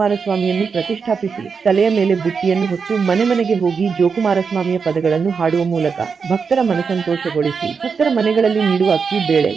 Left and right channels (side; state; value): left; quieter; 5.6 dB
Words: ಪ್ರತಿಷ್ಠಾಪಿಸಿ ತಲೆಯ ಮೇಲೆ ಬುಟ್ಟಿಯನ್ನು ಹೊತ್ತು ಮನೆಗೆ ಹೋಗಿ ಜೋಕುಮಾರಸ್ವಾಮಿಯ ಪದಗಳನ್ನು ಹಾಡುವ ಮೂಲಕ ಭಕ್ತರ ಮನಸಂತೋಷಗೊಳಿಸಿ ಭಕ್ತರ ಮನೆಗಳಲ್ಲಿ ನೀಡುವ ಅಕ್ಕಿ, ಬೇಳೆ,